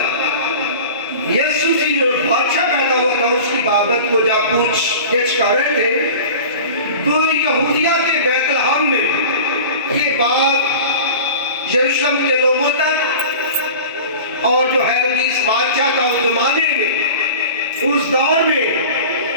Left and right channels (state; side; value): inverted; both; correlation -0.37